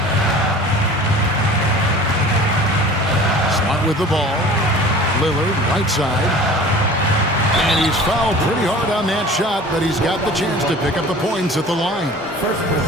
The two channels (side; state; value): both; normal; correlation 0.43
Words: Smart with the ball. Lillard, right side. And he's fouled pretty hard on that shot, but he's got the chance to pick up the points at the line.